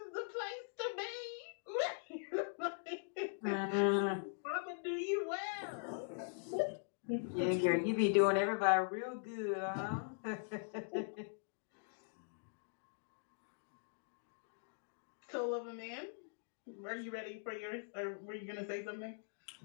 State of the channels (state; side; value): silent; right; digital silence